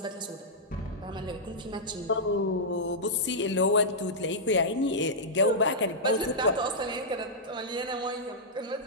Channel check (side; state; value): both; normal; correlation -0.11